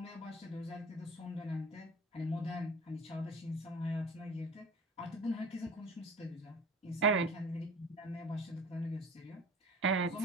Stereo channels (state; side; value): normal; both; correlation 0.41